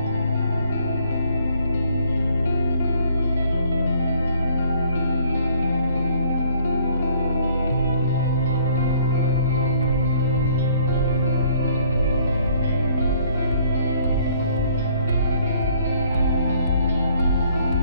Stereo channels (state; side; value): inverted; both; correlation -0.61